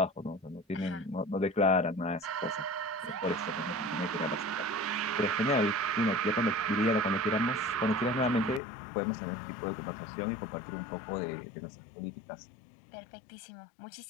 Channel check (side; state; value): right; drops out; at 8.6 s